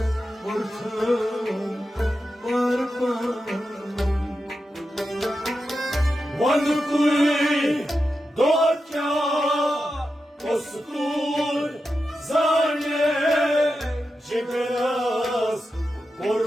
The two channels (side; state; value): both; normal; correlation 0.90